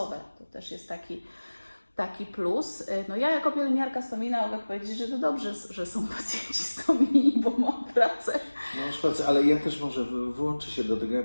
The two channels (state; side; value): inverted; both; correlation -1.00